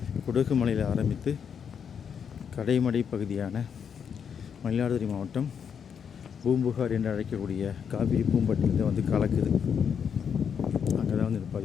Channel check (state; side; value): quieter; right; 7.3 dB